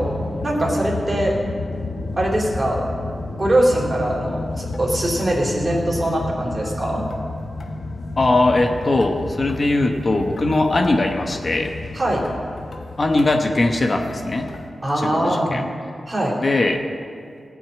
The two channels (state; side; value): normal; both; correlation 0.93